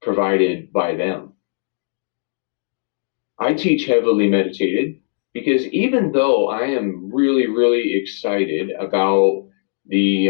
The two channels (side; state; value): right; silent; digital silence